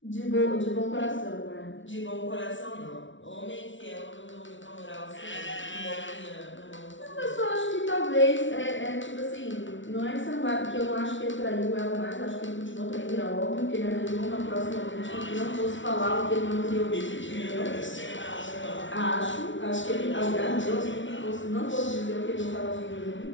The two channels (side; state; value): right; late; 0.56 ms